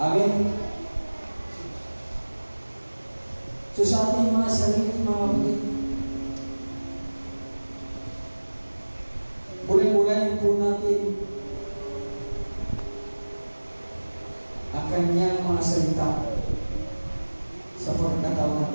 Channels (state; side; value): inverted; both; correlation -1.00